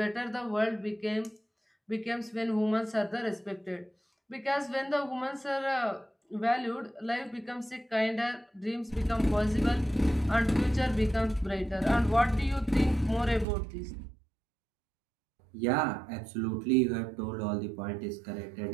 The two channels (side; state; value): left; drops out; at 13.5 s